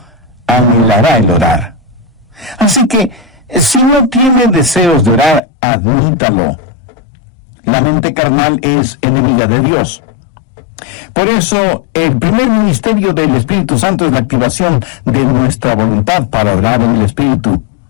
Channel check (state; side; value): drops out; right; at 5.4 s